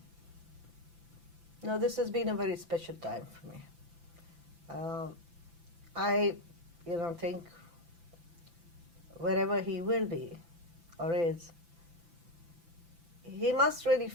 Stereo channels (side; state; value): left; late; 5.9 ms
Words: Now this has been a very special time for me. I, think wherever he will be or is, he must really